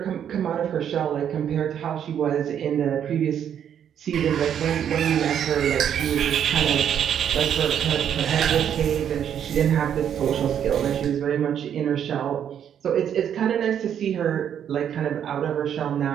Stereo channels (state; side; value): quieter; left; 9.1 dB